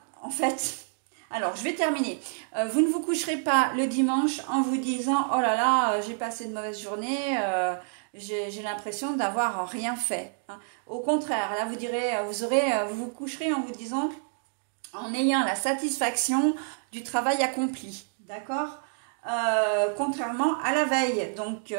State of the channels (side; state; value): left; silent; digital silence